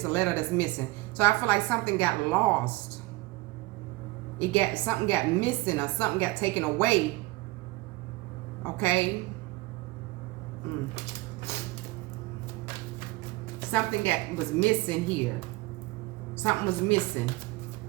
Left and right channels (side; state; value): left; quieter; 21.0 dB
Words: a letter that's missing. So I feel like something got lost. Something got missing, or something got taken away. Okay. Something was missing here. Something was missing.